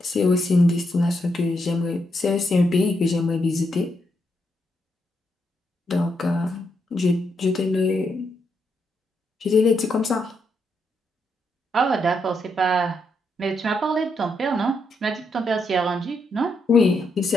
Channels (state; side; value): normal; both; correlation 0.80